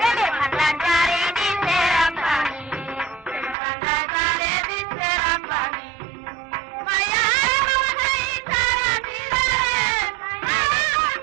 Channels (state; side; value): drops out; left; at 3.6 s